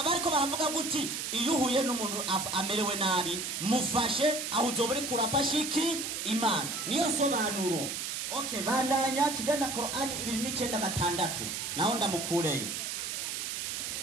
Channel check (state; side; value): noise; right; hiss, 4 dB below the sound